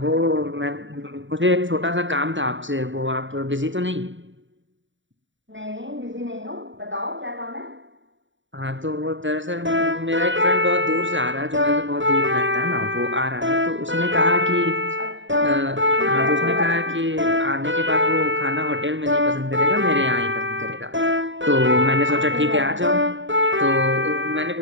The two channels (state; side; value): late; left; 0.55 ms